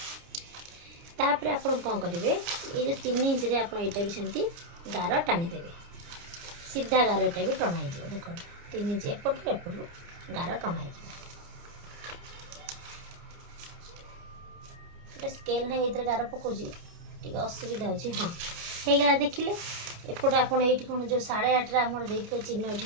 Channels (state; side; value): late; left; 29 ms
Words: तापर आप कौन करेंगे ये जो 3 इंच रे आप यहाँ भी सेमती गार टाणीदेवे सीधा गार यहाँ भी टणाई देखो 3 इंच एपटू एपटू गार टणाई स्केल ना ये गार पकाउची टी असुविधा हो हाँ होगा देखिले एपटे आप कौन जो 8.5 आम दे चिन्ह ये